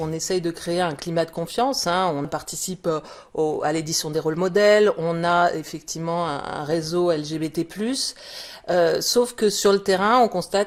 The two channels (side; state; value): both; identical; correlation 1.00